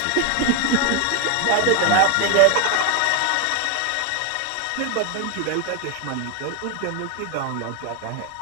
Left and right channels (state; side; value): different; both; correlation 0.01